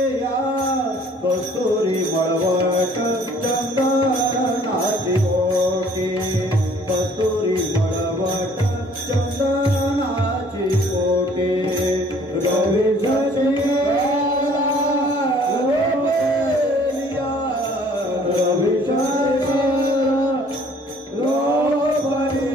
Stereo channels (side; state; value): both; normal; correlation 0.57